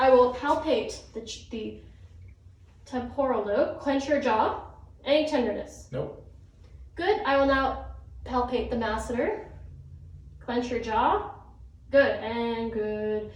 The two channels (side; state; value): both; identical; correlation 1.00